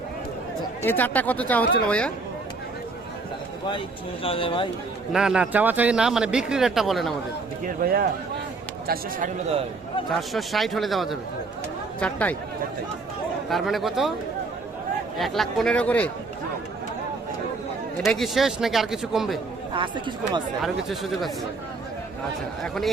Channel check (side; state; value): left; quieter; 3.8 dB